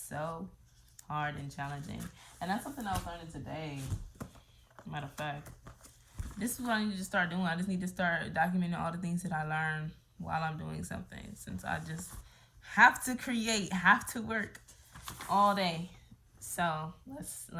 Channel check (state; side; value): identical; both; correlation 1.00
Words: so hard and challenging. And that's something I was learning today. Matter of fact, this is what I need to start doing. I just need to start documenting all the things that I learn while I'm doing something, since I just have to create, have to work all day. So let's